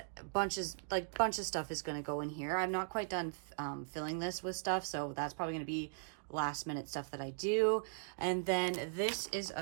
bunch of stuff is going to go in here. I'm not quite done filling this with stuff, so that's probably going to be last minute stuff that I do. And then this is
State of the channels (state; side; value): silent; left; digital silence